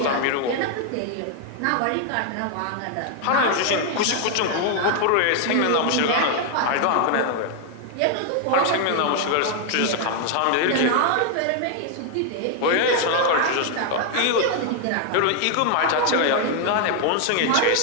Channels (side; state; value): both; different; correlation 0.00